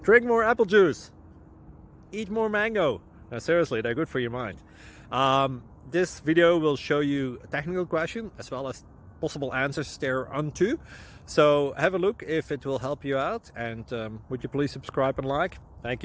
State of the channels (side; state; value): both; identical; correlation 1.00